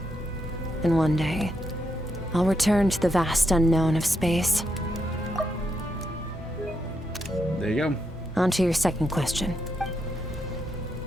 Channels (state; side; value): normal; both; correlation 0.81